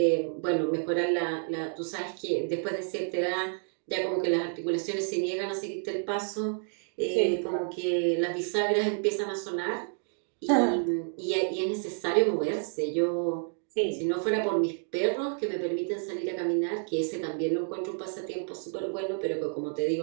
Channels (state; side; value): silent; left; 58 dB below the other